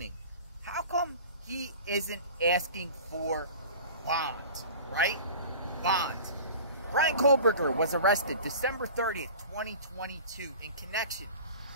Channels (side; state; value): both; inverted; correlation -0.39